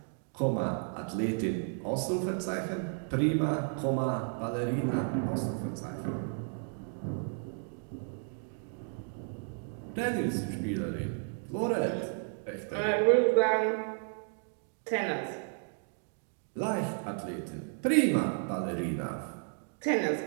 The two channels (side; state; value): left; silent; 56 dB below the other